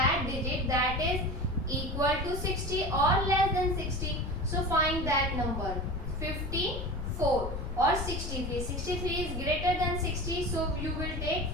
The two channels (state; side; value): noise; left; rumble, 6 dB below the sound